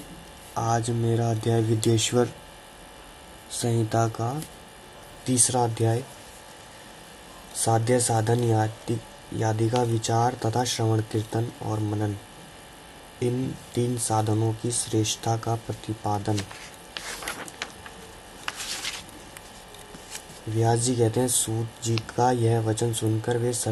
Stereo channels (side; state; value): both; identical; correlation 1.00